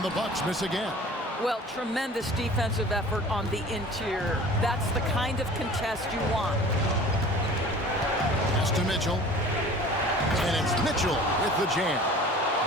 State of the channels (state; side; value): normal; both; correlation 0.44